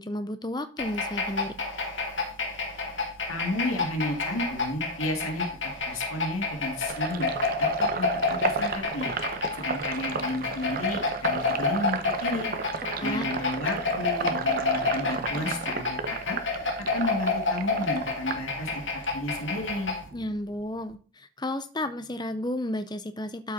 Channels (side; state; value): both; normal; correlation 0.02